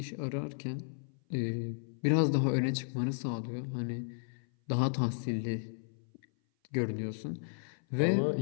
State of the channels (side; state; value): right; silent; 55 dB below the other